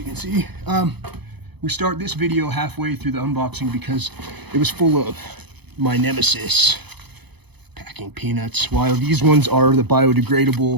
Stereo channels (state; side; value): late; left; 0.99 ms